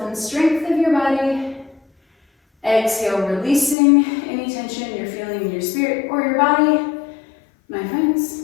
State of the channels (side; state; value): right; drops out; at 3.8 s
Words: and strength of your body. Exhale, releasing any tension you're feeling in your spirit or your body. My friends,